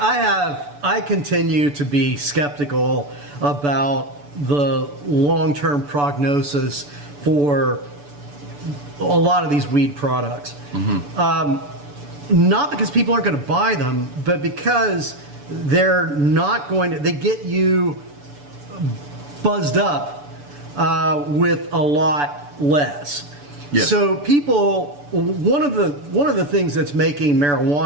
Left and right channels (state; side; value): late; left; 6.9 ms